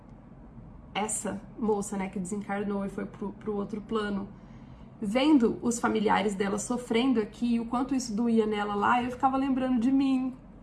essa moça, né, que desencarnou e foi pro outro plano, vendo os familiares dela sofrendo aqui, o quanto isso doía nela lá, eu ficava lembrando de mim,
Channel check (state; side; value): identical; both; correlation 1.00